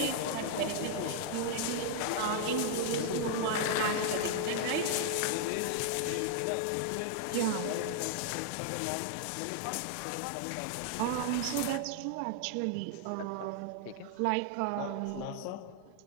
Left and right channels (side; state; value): both; different; correlation 0.00